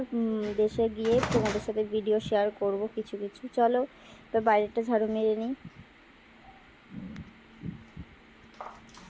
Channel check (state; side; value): identical; both; correlation 1.00